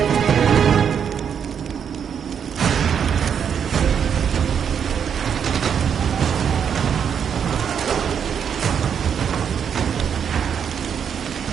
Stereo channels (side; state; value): left; quieter; 7.7 dB